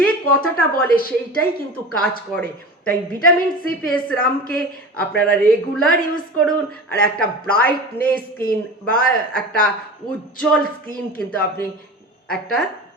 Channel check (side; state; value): both; normal; correlation 0.33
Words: কথাটা বলে সেইটাই কিন্তু কাজ করে। তাই ভিটামিন সি ফেস সিরামকে আপনারা রেগুলার ইউজ করুন, আর একটা ব্রাইটনেস স্কিন বা একটা উজ্জ্বল স্কিন কিন্তু আপনি একটা